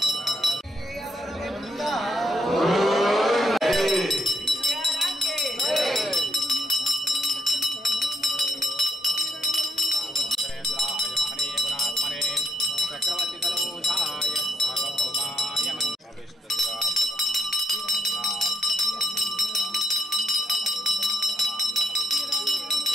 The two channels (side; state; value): both; normal; correlation 0.74